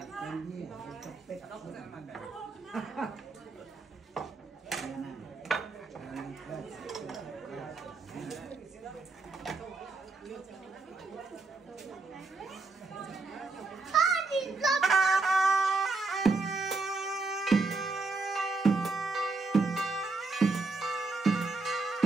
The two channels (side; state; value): left; quieter; 3.8 dB